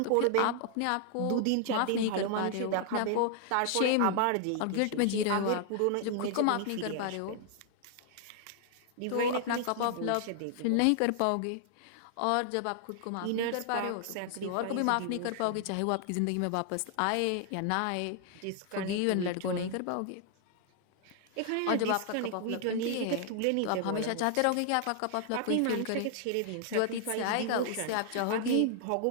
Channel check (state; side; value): different; both; correlation 0.00